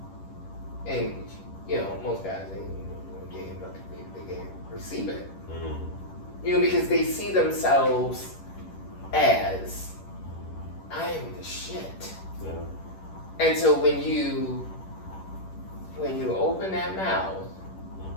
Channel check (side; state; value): right; late; 10 ms